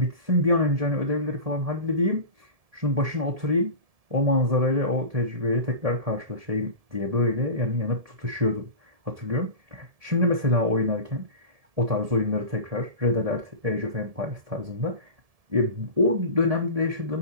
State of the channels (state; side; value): late; left; 1.7 ms